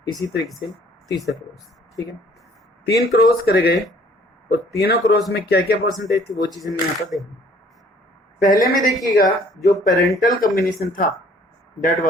इसी तरीके से तीसरा क्रॉस, ठीक है। 3 क्रॉस करे गए और तीनों क्रॉस में क्या क्या परसेंटेज थी वो चीज हमने यहाँ पर देखी। पहले में देखिएगा जो पेरेंटल कॉम्बिनेशन था दैट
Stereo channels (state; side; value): normal; both; correlation 0.57